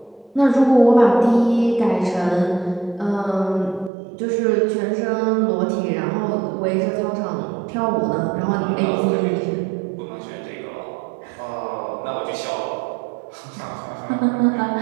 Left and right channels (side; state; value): left; drops out; at 3.9 s